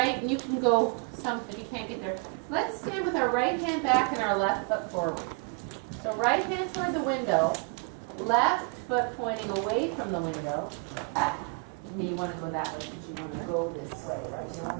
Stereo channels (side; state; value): left; quieter; 34.0 dB